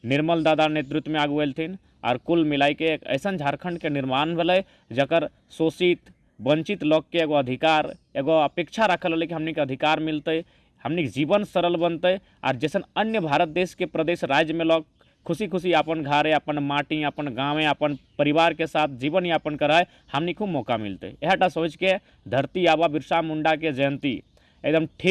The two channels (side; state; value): both; identical; correlation 1.00